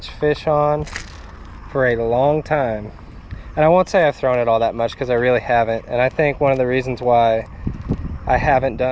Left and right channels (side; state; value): both; identical; correlation 1.00